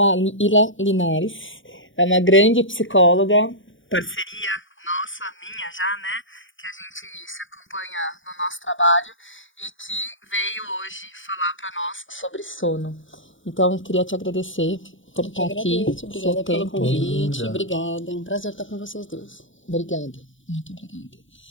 Ila Linares, é uma grande psicóloga, parceria nossa, minha já, né, que a gente se acompanha no nosso trabalho e que veio hoje falar para nós sobre sono. Então, queria te agradecer por estar aqui. Obrigada pelo convite. Obrigada. É um prazer estar com vocês dois. Obrigada. Muito obrigada.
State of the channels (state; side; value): late; right; 0.56 ms